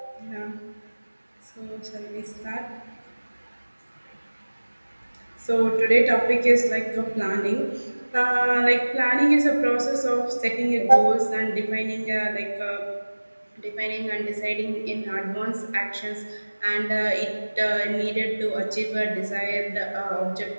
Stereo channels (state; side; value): inverted; both; correlation -1.00